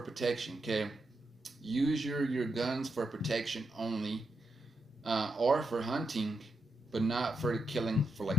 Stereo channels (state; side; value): normal; both; correlation 0.85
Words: protection. Okay, use your guns for protection only, or for hunting, but not for killing,